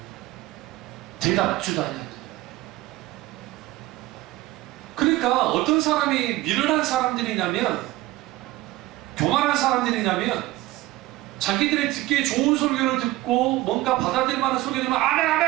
대답주도 아니야. 그러니까 어떤 사람이 미련한 사람들이냐면 교만한 사람들이냐면 자기들이 듣기에 좋은 설교를 듣고 뭔가 받아들일 만한 설교를 들으면 아멘 아멘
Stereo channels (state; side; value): quieter; left; 17.6 dB